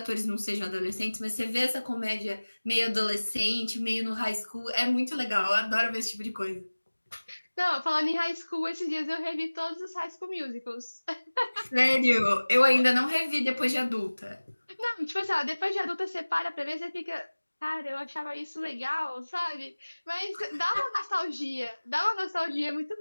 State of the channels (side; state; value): both; inverted; correlation -1.00